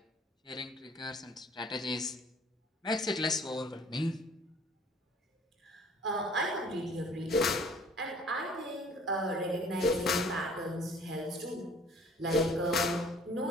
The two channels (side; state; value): both; normal; correlation 0.53